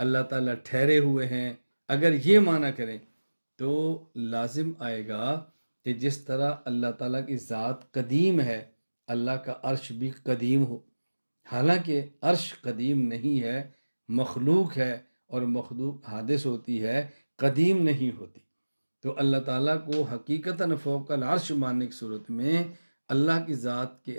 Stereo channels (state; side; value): inverted; both; correlation -1.00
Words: تعالیٰ ٹھہرے ہوئے ہیں، اگر یہ معنی کریں تو لازم آئے گا کہ جس طرح اللہ تعالیٰ کی ذات قدیم ہے، اللہ کا عرش بھی قدیم ہو، حالانکہ عرش قدیم نہیں ہے، مخلوق ہے، اور مخلوق حادث ہوتی ہے، قدیم نہیں ہوتی۔ تو اللہ تعالیٰ کو حقیقتاً فوق العرش ماننے کی صورت میں اللہ کی ذات کے